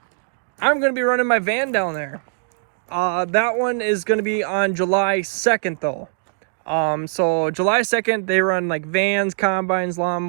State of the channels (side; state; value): left; silent; 65 dB below the other